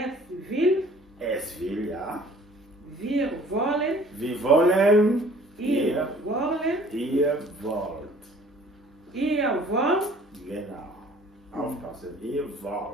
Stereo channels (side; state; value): both; normal; correlation 0.53